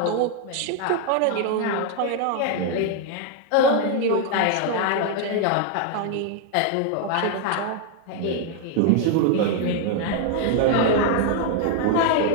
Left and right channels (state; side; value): different; both; correlation 0.00